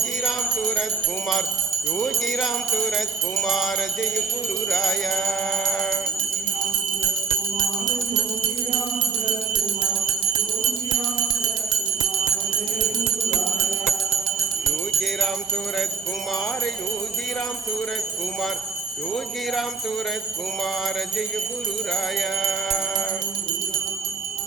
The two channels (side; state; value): left; quieter; 5.4 dB